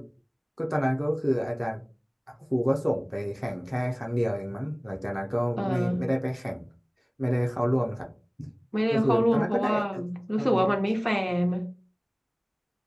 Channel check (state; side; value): identical; both; correlation 1.00